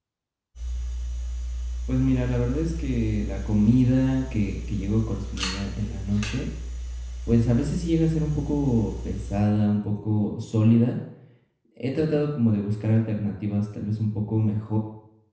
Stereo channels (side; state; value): both; identical; correlation 1.00